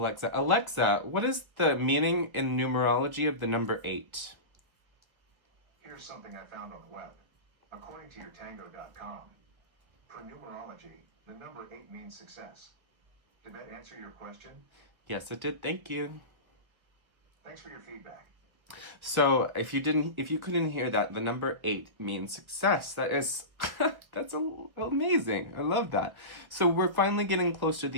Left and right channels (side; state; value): left; late; 1.3 ms